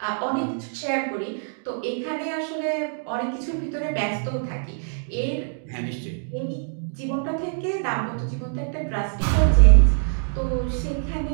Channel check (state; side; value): silent; left; digital silence